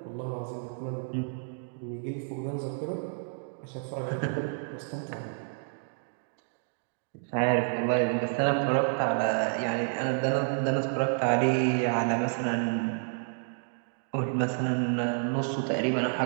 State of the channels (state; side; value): silent; left; digital silence